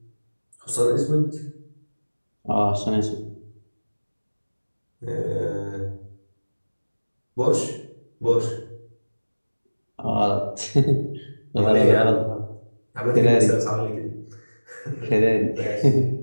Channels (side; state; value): both; inverted; correlation -1.00